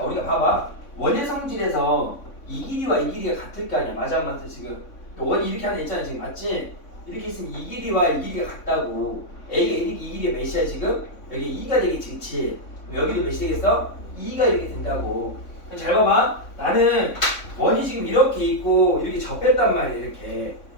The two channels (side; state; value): right; late; 3.6 ms